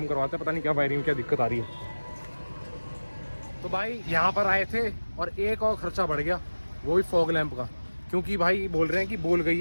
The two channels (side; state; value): both; inverted; correlation -1.00